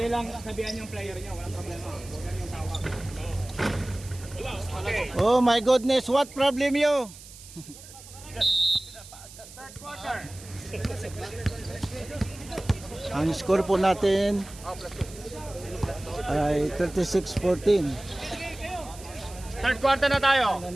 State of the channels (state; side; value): noise; right; hiss, 18 dB below the sound